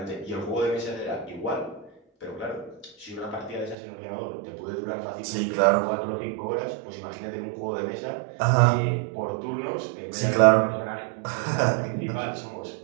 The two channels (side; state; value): left; drops out; at 3.8 s